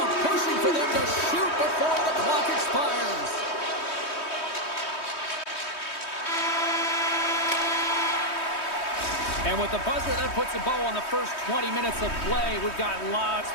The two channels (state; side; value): late; right; 3.2 ms